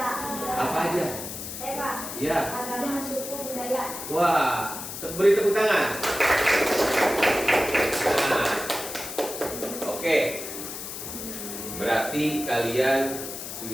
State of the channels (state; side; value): noise; left; hiss, 8 dB below the sound